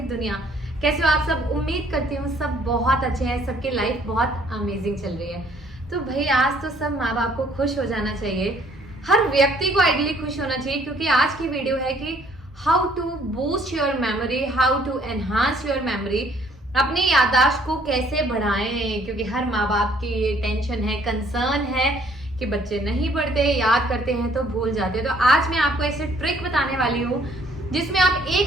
दुनिया। कैसे हो आप सब? उम्मीद करती हूँ सब बहुत अच्छे हैं, सबकी लाइफ बहुत अमेजिंग चल रही है। तो भाई आज तो सब माँ बाप को खुश हो जाना चाहिए, हर व्यक्ति को आइडियली खुश होना चाहिए, क्योंकि आज की वीडियो है कि how to boost your memory, how to enhance your memory. अपनी याददाश्त को कैसे बढ़ाएं, क्योंकि हर माँ बाप की ये टेंशन है, कंसर्न है कि बच्चे नहीं पढ़ते, याद करते हैं तो भूल जाते हैं। तो आज मैं आपको ऐसे ट्रिक बताने वाली हूँ जिसमें आप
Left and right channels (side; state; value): both; normal; correlation 0.62